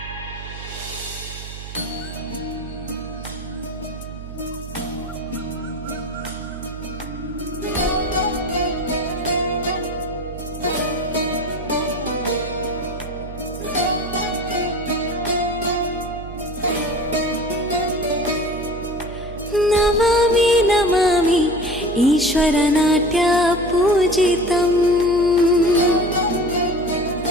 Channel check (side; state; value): right; noise; hum, 11 dB below the sound